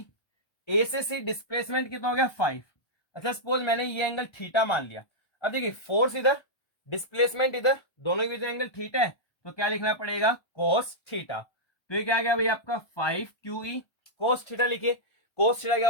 ए से सी डिस्प्लेसमेंट कितना हो गया 5। अच्छा सपोज मैंने ये एंगल थीटा मान लिया। अब देखिए फोर्स इधर, डिस्प्लेसमेंट इधर, दोनों के बीच एंगल थीटा है, तो क्या लिखना पड़ेगा, cos थीटा। तो ये क्या गया भाई आपका 5QE cos थीटा लिखिए। cos थीटा क्या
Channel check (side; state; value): right; late; 1.3 ms